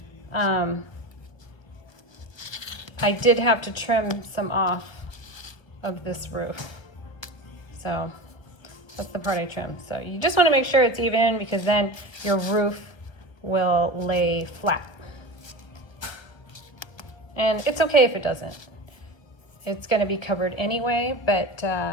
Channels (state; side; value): late; right; 1.4 ms